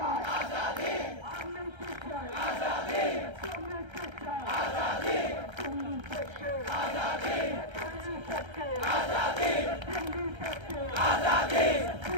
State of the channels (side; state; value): left; late; 1.3 ms